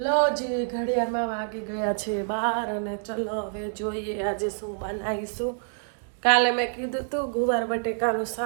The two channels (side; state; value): left; silent; digital silence